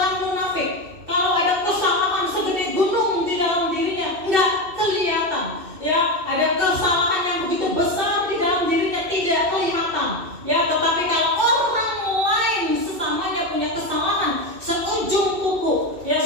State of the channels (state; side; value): late; left; 2.6 ms